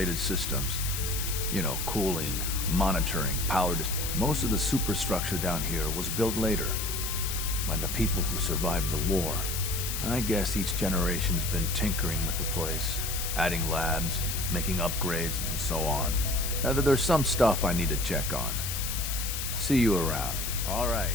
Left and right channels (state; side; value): noise; left; hiss, 4 dB below the sound